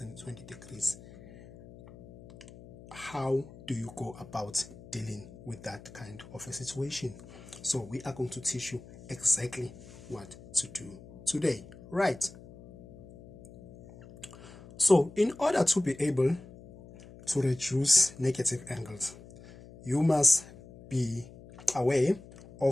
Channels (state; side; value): noise; left; hum, 19 dB below the sound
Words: degrees. How do you go about dealing with that kind of a situation? So we are going to teach you exactly what to do today, right? So in order to be able to reduce negative angles, you must be aware